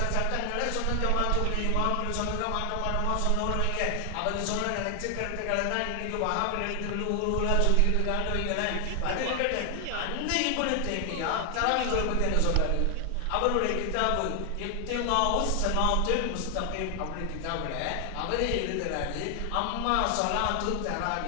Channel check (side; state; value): both; different; correlation 0.00